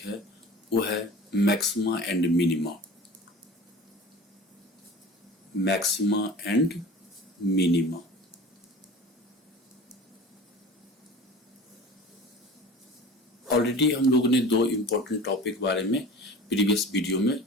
वो है maxima and minima. Maxima and minima. Already हम लोगों ने दो इम्पोर्टेंट टॉपिक बारे में प्रीवियस वीडियो में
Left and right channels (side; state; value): both; normal; correlation 0.39